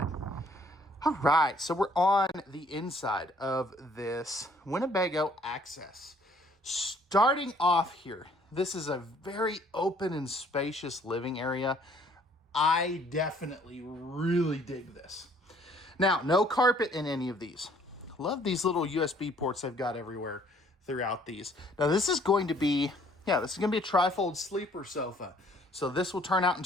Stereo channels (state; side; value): normal; both; correlation 0.60